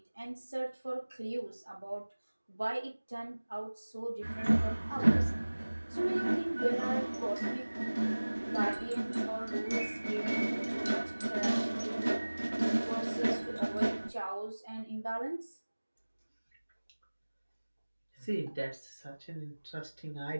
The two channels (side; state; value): both; inverted; correlation -1.00